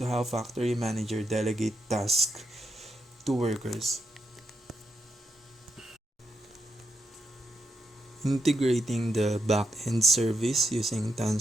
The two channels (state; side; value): normal; both; correlation 0.84